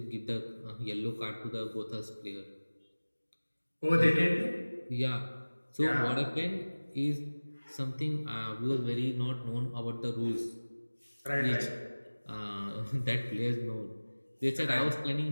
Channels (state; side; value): inverted; both; correlation -1.00